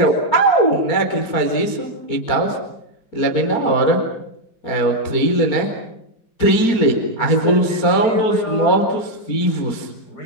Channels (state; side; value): late; right; 4.4 ms